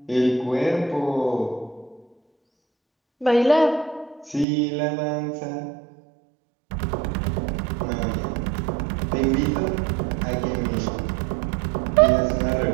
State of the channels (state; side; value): drops out; left; at 4.5 s